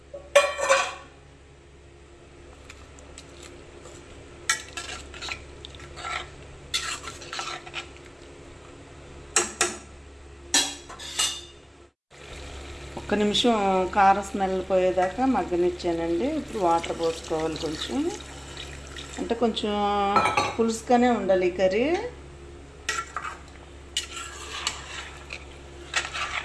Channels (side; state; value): both; identical; correlation 1.00